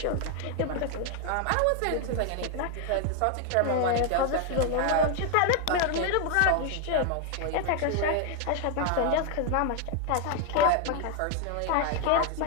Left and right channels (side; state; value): both; different; correlation 0.00